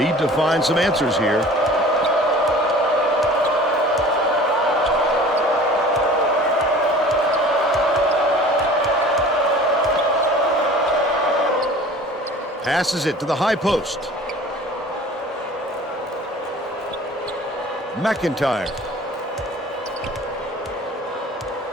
to find some answers here. Passes it to the high post. McIntyre.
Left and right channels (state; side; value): normal; both; correlation 0.44